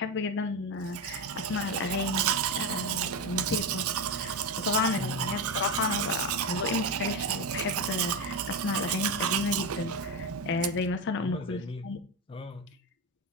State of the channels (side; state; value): both; normal; correlation 0.15